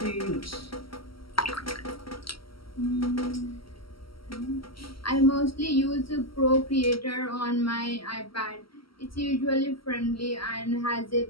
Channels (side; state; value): right; late; 0.74 ms